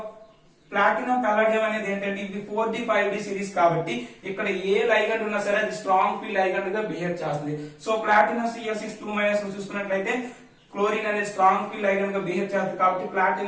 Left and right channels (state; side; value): identical; both; correlation 1.00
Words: ప్లాటినం పల్లడియం అనేది ఏంటంటే ఇది 4D 5D సిరీస్ కాబట్టి ఇక్కడ ఏ లైగండ్ ఉన్నా సరే అది స్ట్రాంగ్ ఫీల్డ్ లైగండ్ గా బిహేవ్ చేస్తుంది. సో ప్లాటినం Cl6 చూసుకున్నట్లయితే క్లోరిన్ అనేది స్ట్రాంగ్ ఫీల్డ్ లైగండ్ గా బిహేవ్ చేస్తుంది కాబట్టి